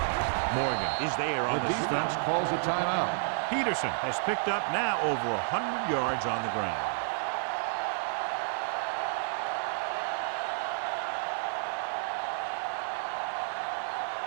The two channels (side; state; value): left; silent; digital silence